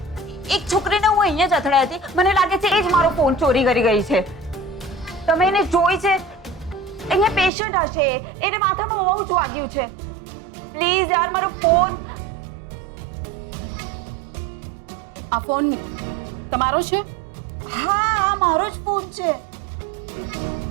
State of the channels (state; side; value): drops out; left; at 7.5 s